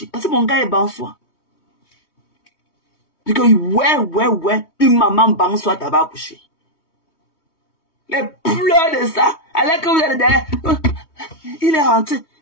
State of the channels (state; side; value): late; right; 3.2 ms